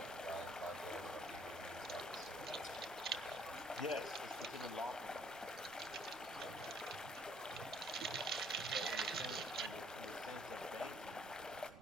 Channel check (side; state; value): right; noise; rumble, 22 dB below the sound